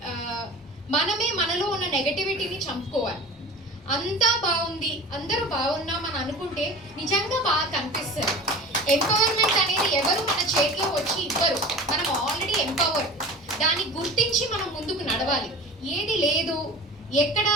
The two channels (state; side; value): normal; both; correlation 0.37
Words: మనమే మనలో ఉన్న నెగటివిటీని చంపుకోవాలి. అంతా బాగుంది, అందరూ బాగున్నామని అనుకుంటే నిజంగా బాగా కనిపిస్తుంది. ఎంపవర్మెంట్ అనేది ఎవరు మన చేతిలో వచ్చి ఇవ్వరు, మనం ఆల్రెడీ ఎంపవర్. దాన్ని గుర్తించి మనం ముందుకు నడవాలి. ఏది లేదు, ఎక్కడ